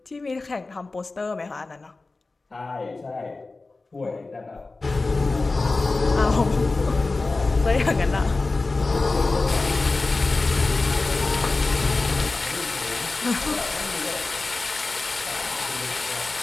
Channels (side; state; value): right; quieter; 3.5 dB